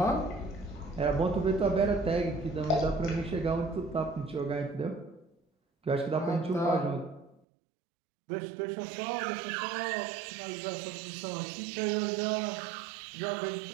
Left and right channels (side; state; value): left; drops out; at 7.4 s